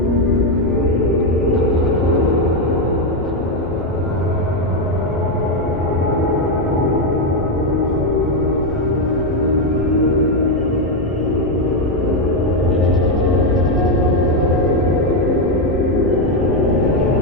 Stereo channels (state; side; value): normal; both; correlation 0.05